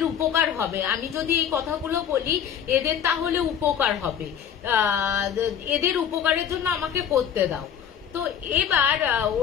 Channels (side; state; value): right; quieter; 8.6 dB